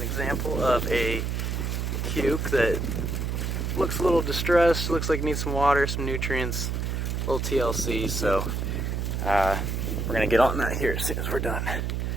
example of a cuke that looks a little distressed, looks like it needs some water, some nutrients, a little TLC, so we're going to get on that here as soon as we're done.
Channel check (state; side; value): noise; right; hum, 1 dB below the sound